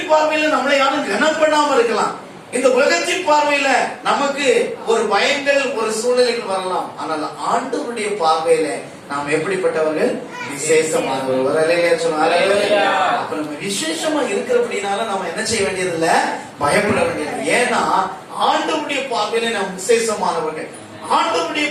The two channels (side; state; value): both; identical; correlation 1.00